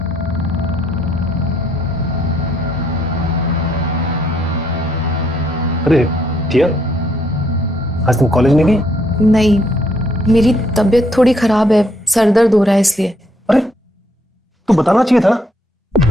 अरे दिया, आज तुम कॉलेज नहीं गई? नहीं, मेरी तबीयत थोड़ी खराब है, सर दर्द हो रहा है इसलिए। अरे तू बताना चाहिए था ना।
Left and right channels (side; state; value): both; normal; correlation 0.70